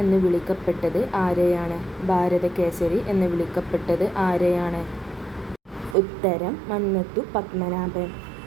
എന്ന് വിളിക്കപ്പെട്ടത് ആരെയാണ്? ഭാരതകേസരി എന്ന് വിളിക്കപ്പെട്ടത് ആരെയാണ്? ഉത്തരം മന്നത്തു പത്മനാഭൻ.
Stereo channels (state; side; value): drops out; left; at 6.0 s